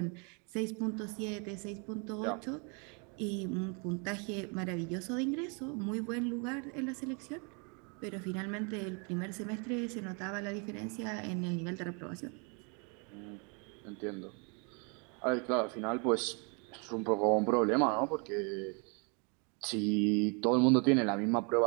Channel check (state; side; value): quieter; left; 35.1 dB